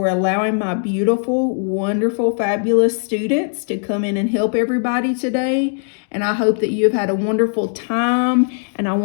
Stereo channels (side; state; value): right; silent; 67 dB below the other